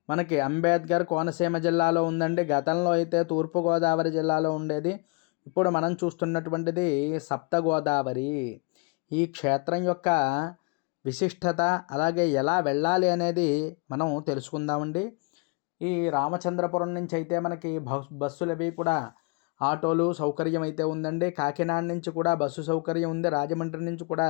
మనకి అంబేద్కర్ కోనసీమ జిల్లాలో ఉందండి. గతంలో అయితే తూర్పుగోదావరి జిల్లాలో ఉండేది. ఇప్పుడు మనం చూస్తున్నటువంటిది సప్త గోదావరి. ఈ క్షేత్రం యొక్క విశిష్టత, అలాగే ఎలా వెళ్ళాలి అనేది మనం తెలుసుకుందామండి. ఈ రామచంద్రపురం నుంచి అయితే మనకి బస్సులు అవి కూడా ఆటోలు సౌకర్యం అయితే ఉందండి. కాకినాడ నుంచి కూడా బస్సు సౌకర్యం ఉంది. రాజమండ్రి నుంచి కూడా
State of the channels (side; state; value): right; quieter; 32.4 dB